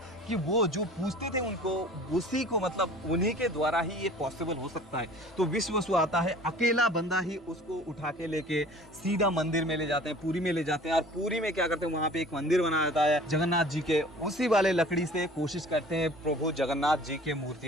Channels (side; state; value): both; normal; correlation 0.46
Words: कि वो जो पूछते थे उनको, उसी को मतलब उन्हीं के द्वारा ही ये पॉसिबल हो सकता है। तो विश्ववसु आता है, अकेला बंदा ही उसको उठा के लेके सीधा मंदिर में ले जाते हैं, पुरी में ले जाते हैं। और पुरी में क्या करते हैं, वहां पे एक मंदिर बनाया जाता है जगन्नाथ जी के, उसी वाले लकड़ी से कोशिश करते हैं प्रभु जगन्नाथ जी के